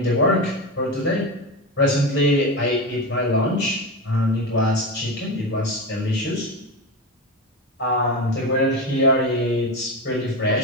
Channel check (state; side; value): normal; both; correlation 0.19